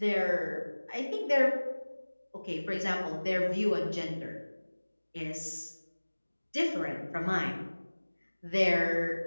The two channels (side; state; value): both; inverted; correlation -1.00